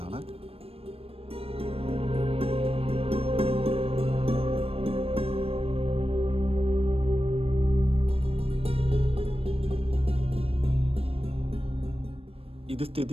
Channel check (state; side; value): late; left; 0.28 ms